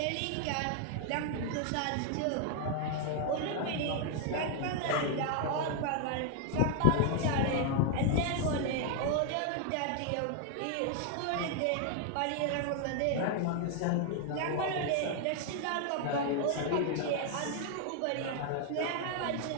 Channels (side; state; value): both; different; correlation 0.00